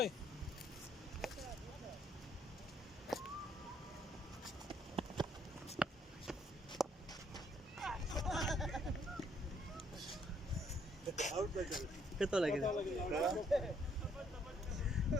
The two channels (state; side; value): normal; both; correlation 0.68